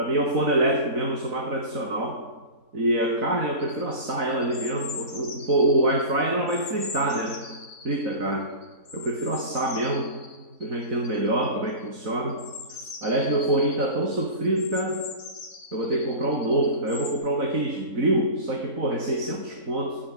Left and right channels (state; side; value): late; left; 4.0 ms